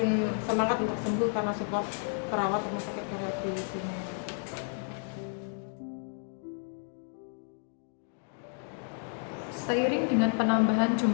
semangat untuk sembuh karena support perawat rumah sakit Karyadi di sini. Seiring dengan penambahan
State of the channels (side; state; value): right; silent; 57 dB below the other